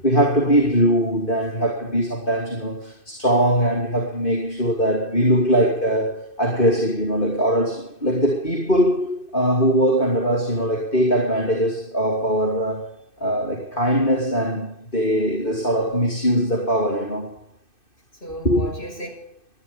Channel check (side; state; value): right; late; 2.6 ms